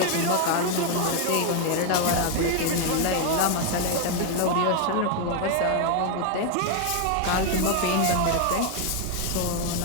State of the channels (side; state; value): both; different; correlation 0.01